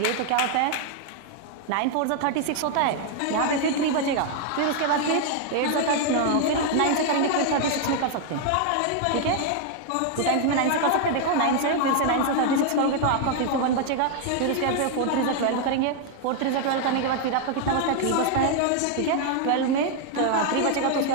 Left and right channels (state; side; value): different; both; correlation 0.00